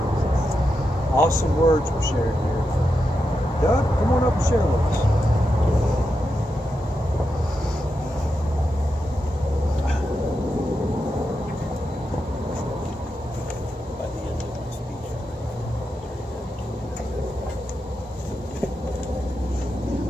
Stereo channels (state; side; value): normal; both; correlation 0.87